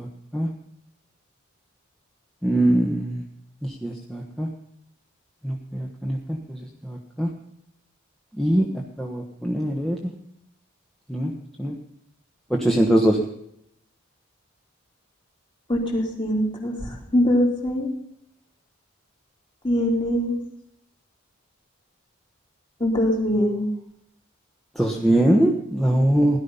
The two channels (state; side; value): normal; both; correlation 0.85